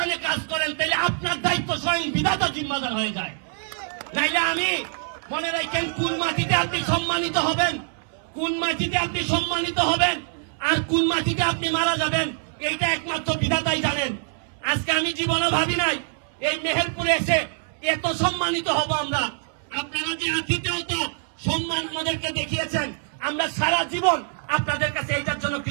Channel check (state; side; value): silent; left; 62 dB below the other